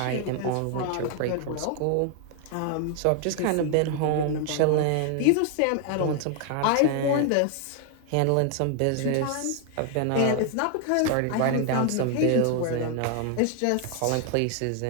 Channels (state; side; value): different; both; correlation 0.00